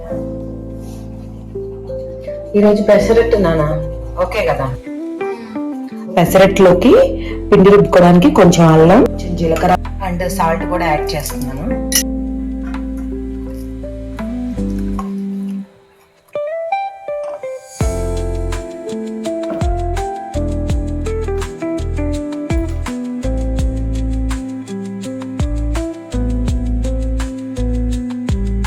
ఈరోజు పెసరట్టు నానా ఓకే కదా. పెసరట్టులోకి పిండి రుబ్బుకోవడానికి కొంచెం అల్లం, కొంచెం జీలకర్ర అండ్ సాల్ట్ కూడా యాడ్ చేస్తున్నాను.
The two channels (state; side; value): identical; both; correlation 1.00